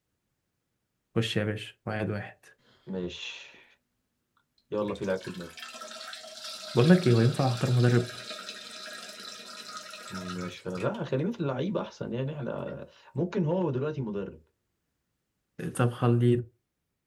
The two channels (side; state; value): both; identical; correlation 1.00